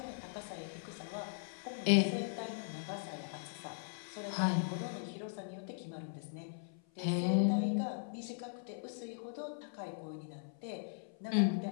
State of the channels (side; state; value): right; silent; 52 dB below the other